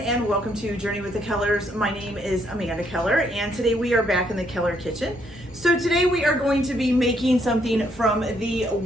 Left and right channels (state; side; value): normal; both; correlation 0.71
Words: welcome to Journey with the Kellers. My name is Amanda Keller and today we are back in the Keller kitchen. So today we are going to be making something from the